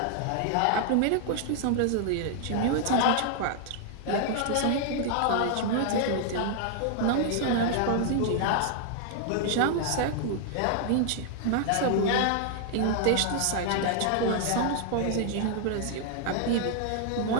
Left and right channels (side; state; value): both; different; correlation 0.00